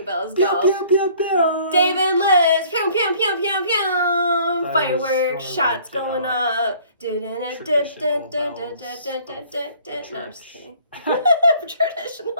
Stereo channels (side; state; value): both; inverted; correlation -0.56